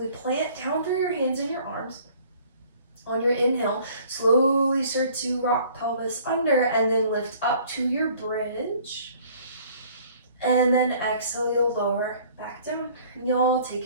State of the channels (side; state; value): both; inverted; correlation -0.54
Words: plant down through your hands and your arms. On your inhale, slowly start to rock pelvis under and then lift up to your bridge. And then exhale, you'll lower back down. And you'll